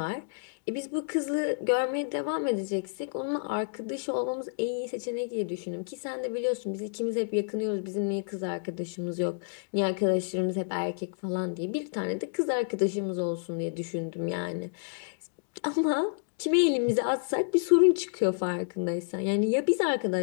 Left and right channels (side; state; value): right; silent; digital silence